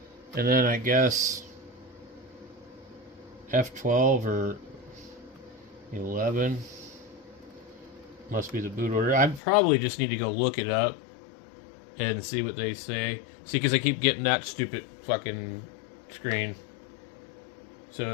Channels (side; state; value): right; drops out; at 9.4 s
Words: And then I guess F12 or 11 must be the boot order. I probably just need to go look it up and see what they say. See, because I keep getting that stupid fucking screen.